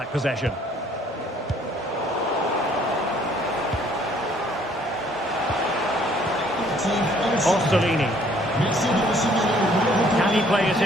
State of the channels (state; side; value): normal; both; correlation 0.61